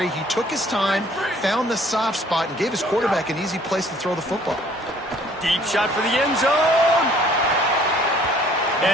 He took his time, found the soft spot, and gave his quarterback an easy place to throw the football. Deep shot for the end zone.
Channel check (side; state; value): both; normal; correlation 0.57